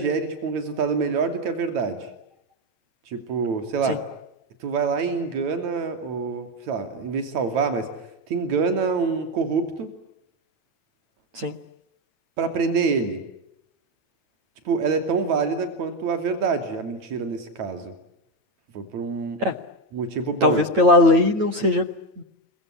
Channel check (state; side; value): late; left; 9.0 ms